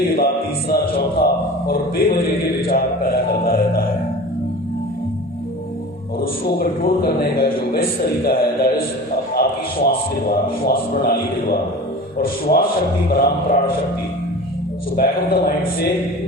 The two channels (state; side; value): normal; both; correlation 0.36